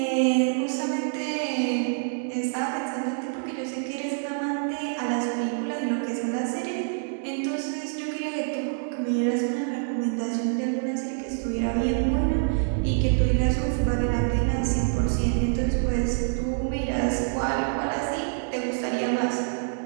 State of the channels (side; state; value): left; silent; 60 dB below the other